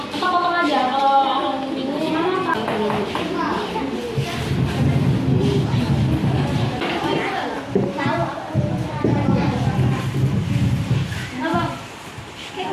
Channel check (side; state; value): both; identical; correlation 1.00